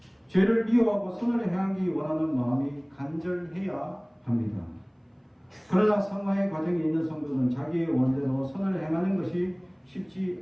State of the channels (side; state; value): both; identical; correlation 1.00